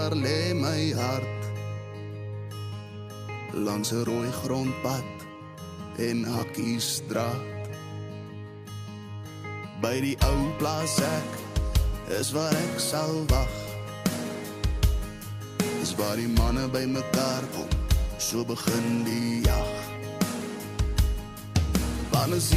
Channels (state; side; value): identical; both; correlation 1.00